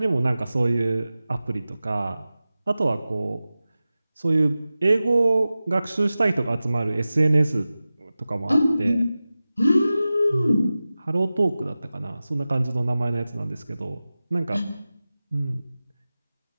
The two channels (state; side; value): inverted; both; correlation -0.96